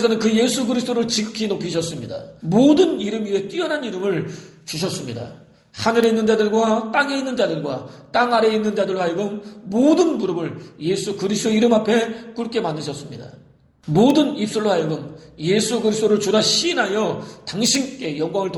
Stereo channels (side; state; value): both; identical; correlation 1.00